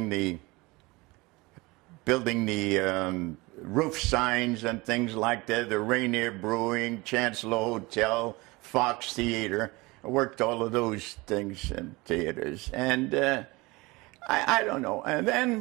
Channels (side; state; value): left; quieter; 23.3 dB